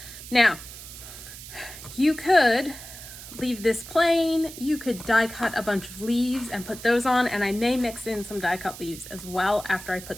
Now, you could leave this plain, you could die cut a bunch of leaves and put those on, and I may mix in some die cut leaves as well after I put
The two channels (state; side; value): noise; right; hiss, 14 dB below the sound